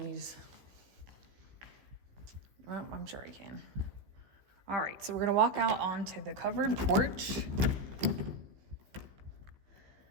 Well, I'm sure I can. All right, so we're gonna walk out onto the covered porch.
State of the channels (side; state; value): left; late; 15 ms